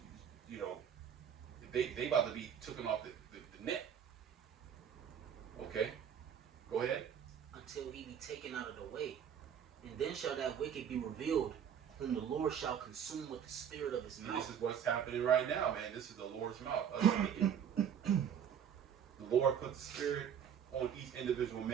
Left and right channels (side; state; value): left; quieter; 8.5 dB